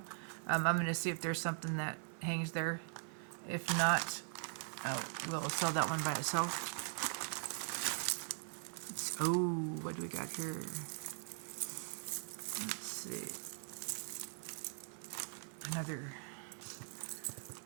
I'm going to see if there's something that hangs there. If not, we'll sell that one by itself. Oh, what do we got here? Let's see. Another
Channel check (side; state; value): left; silent; 50 dB below the other